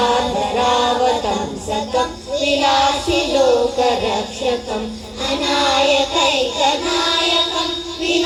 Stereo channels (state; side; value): identical; both; correlation 1.00